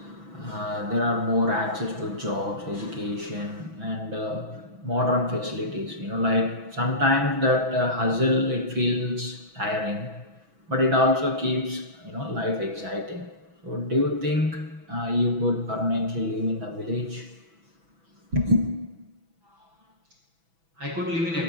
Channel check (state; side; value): late; left; 6.1 ms